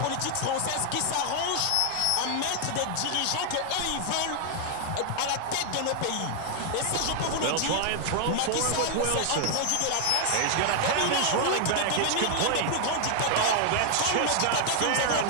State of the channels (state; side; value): different; both; correlation 0.00